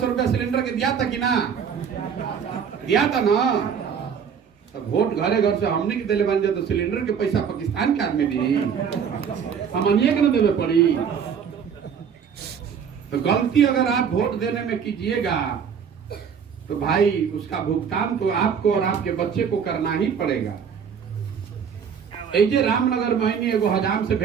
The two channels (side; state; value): left; quieter; 7.2 dB